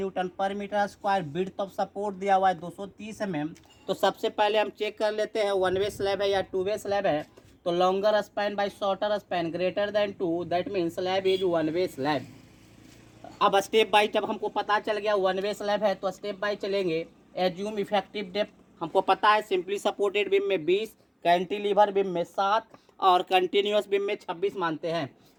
पर metre square, width of support दिया हुआ है 230 mm। तो सबसे पहले हम चेक कर लेते हैं वन वे स्लैब है या टू वे स्लैब है। तो longer span by shorter span greater than 2, that mean slab is one way slab. अब स्टेप बाय, जब हमको पता चल गया वन वे स्लैब है तो स्टेप बाय चलेंगे। एज्यूम इफेक्टिव डेप्थ हमको पता है, सिंपली सपोर्टेड बीम में 20, कैंटिलीवर बीम में 7 और कंटिन्यूस बीम में 26 मानते हैं।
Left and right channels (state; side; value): identical; both; correlation 1.00